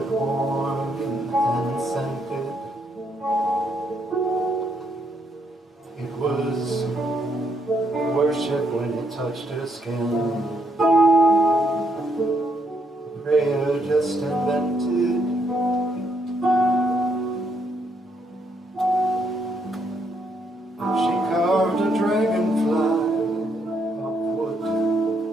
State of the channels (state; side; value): normal; both; correlation 0.75